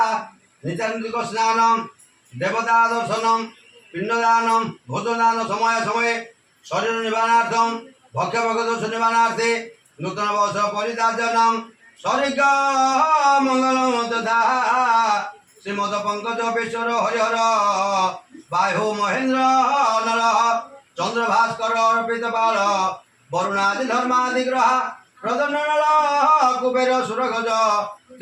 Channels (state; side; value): identical; both; correlation 1.00